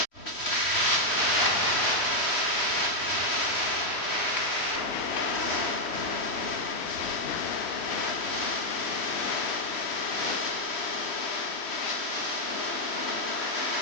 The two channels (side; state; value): right; late; 3.1 ms